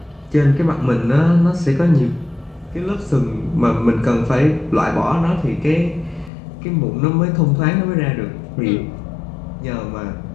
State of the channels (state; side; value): drops out; right; at 6.3 s